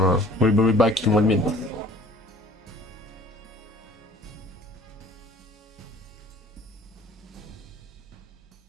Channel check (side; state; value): both; normal; correlation 0.50